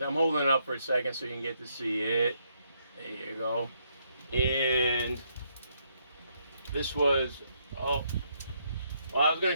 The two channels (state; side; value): inverted; both; correlation -0.75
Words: I'm holding it up for a second so you can get to see it. There you go. And this was, oh, well, I was going